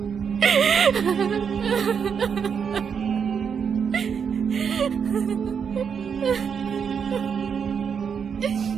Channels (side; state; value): left; quieter; 6.8 dB